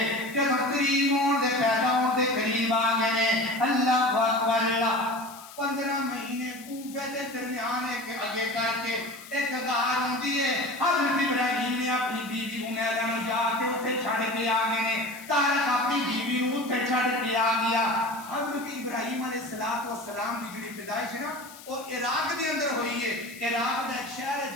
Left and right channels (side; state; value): left; noise; hiss, 18 dB below the sound